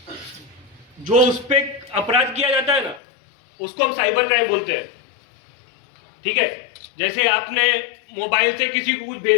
जो उस पर अपराध किया जाता है ना, उसको हम साइबर क्राइम बोलते हैं। ठीक है, जैसे आपने मोबाइल से किसी को कुछ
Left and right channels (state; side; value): drops out; right; at 3.0 s